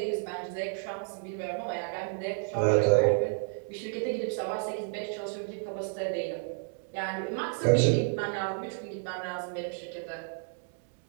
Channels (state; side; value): silent; left; 57 dB below the other